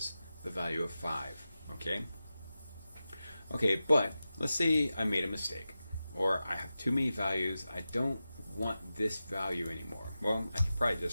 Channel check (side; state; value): both; inverted; correlation -0.93